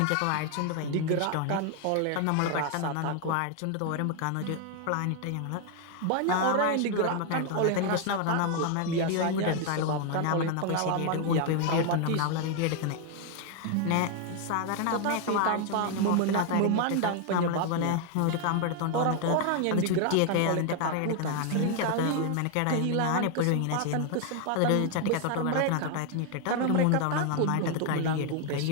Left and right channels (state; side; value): different; both; correlation 0.01